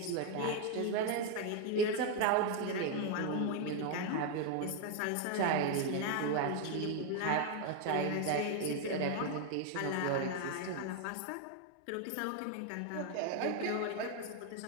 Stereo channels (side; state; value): both; different; correlation 0.01